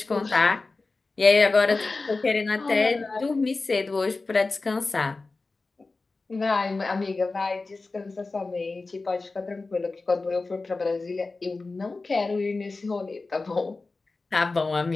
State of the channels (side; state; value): right; quieter; 3.6 dB